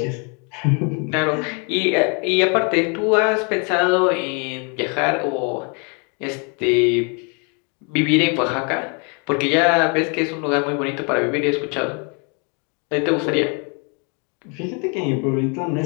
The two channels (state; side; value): quieter; right; 35.5 dB